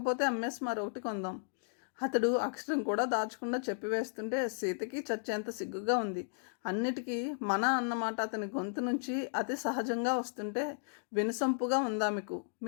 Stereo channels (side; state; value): right; silent; digital silence